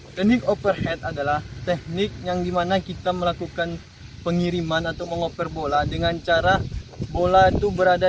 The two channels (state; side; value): identical; both; correlation 1.00